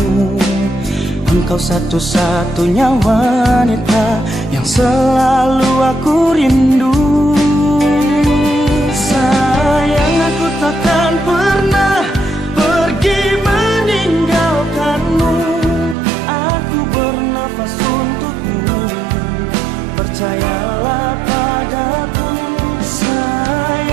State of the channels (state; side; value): drops out; left; at 16.0 s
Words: Engkau satu-satunya wanita yang selalu aku rindu. Sayang, aku takkan pernah pergi meninggalkanmu. Aku bernafas untukmu, percayalah padaku.